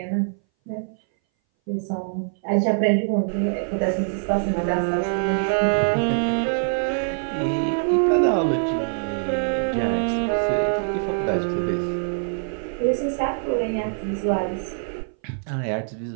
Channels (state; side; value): silent; left; 60 dB below the other